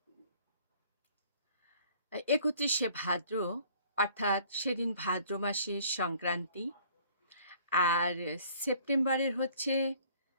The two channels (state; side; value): inverted; both; correlation -0.55